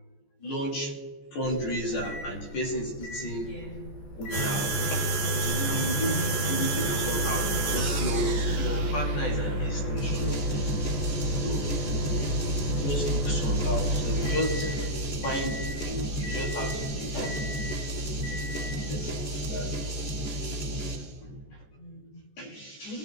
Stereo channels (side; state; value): right; late; 14 ms